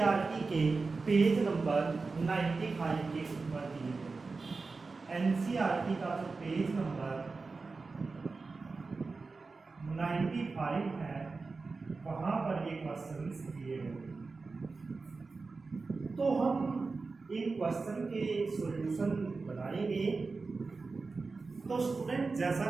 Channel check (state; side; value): quieter; left; 4.1 dB